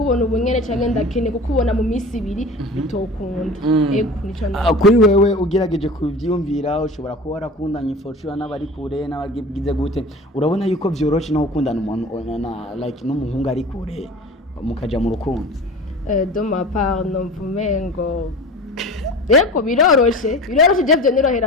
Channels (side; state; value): both; normal; correlation 0.37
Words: ubunyene cyangwa ndakeneye kukubona mu minsi ibiri bitokunda. Nico kuri wewe ugerageje kubyumvira ushobora kuba warakundanye fortune n'abari kure n'abagize gute, urabona yuko byoroshe no gukundana umuntu like n'umuhungu ari kure mukaja mu rukundo? De ma part non vumengo yego biroroshe je